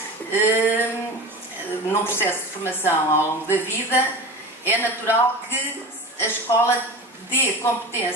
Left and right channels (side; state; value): both; normal; correlation 0.32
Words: num processo de formação ao longo da vida, é natural que a escola dê